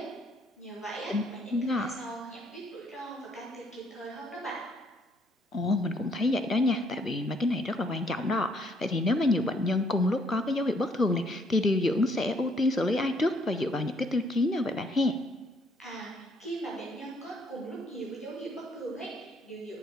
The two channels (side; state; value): both; normal; correlation 0.67